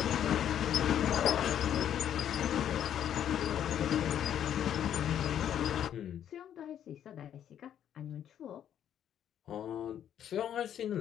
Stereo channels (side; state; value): right; quieter; 10.0 dB